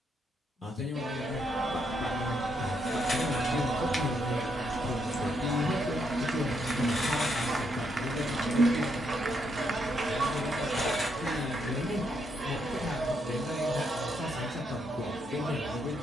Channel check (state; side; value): normal; both; correlation 0.77